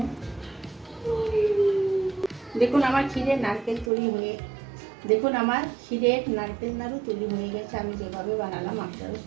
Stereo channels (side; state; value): left; drops out; at 3.9 s